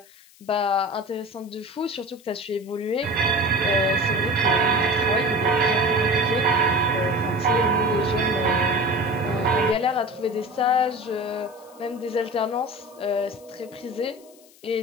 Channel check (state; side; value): noise; left; hiss, 26 dB below the sound